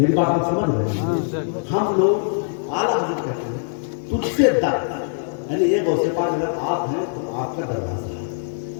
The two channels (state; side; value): silent; right; digital silence